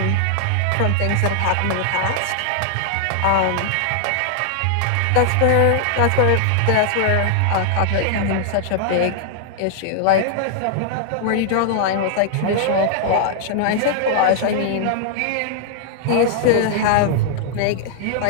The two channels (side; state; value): both; different; correlation -0.01